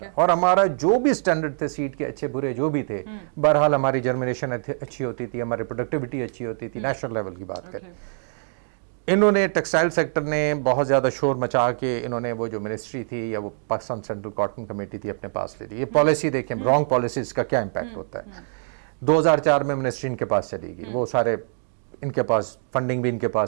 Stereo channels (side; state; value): left; silent; digital silence